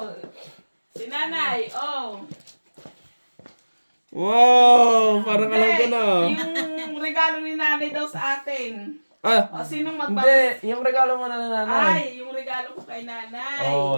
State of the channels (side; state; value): both; inverted; correlation -1.00